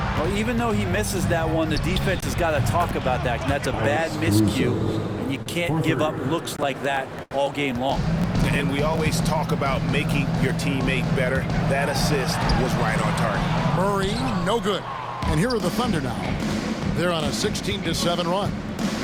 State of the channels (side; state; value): both; identical; correlation 1.00